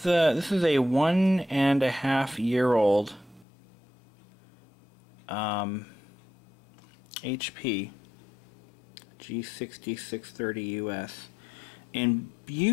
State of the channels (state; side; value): drops out; right; at 3.5 s